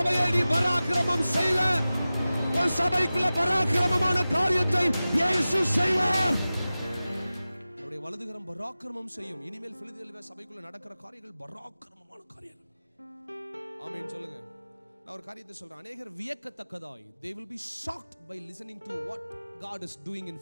நீ பராக்கிரமம் செய்வ. உன் சபைக்குள்ள பராக்கிரமமான காரியத்தை இயேசு செய்வார். அவருடைய வலதுகரம் பராக்கிரமம் செய்யும். இனிமேல் பிலதெல்பியா சபைக்குள்ள நடக்கிற காரியங்கள் பராக்கிரமமான காரியங்கள். ஆமென் சொல்லுங்க. நான் ஒரு காரியத்தை சொல்றேன். அநேகர் வியக்கத்தக்கதாய் they will be shocked by listening to what God is doing in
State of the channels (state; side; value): inverted; both; correlation -0.96